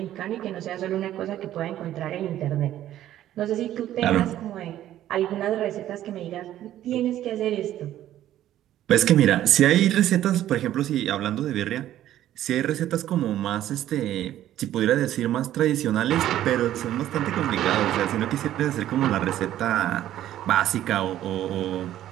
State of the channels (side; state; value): left; quieter; 12.6 dB